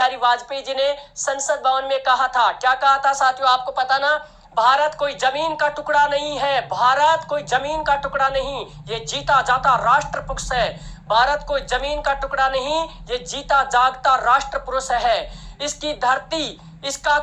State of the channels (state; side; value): identical; both; correlation 1.00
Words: वाजपेयी जी ने संसद भवन में कहा था, क्या कहा था साथियों, आपको पता ना? भारत कोई जमीन का टुकड़ा नहीं है, भारत कोई जमीन का टुकड़ा नहीं, ये जीता जाता राष्ट्र पुरुष है। भारत कोई जमीन का टुकड़ा नहीं, ये जीता जागता राष्ट्र पुरुष है। इसकी धरती, इसका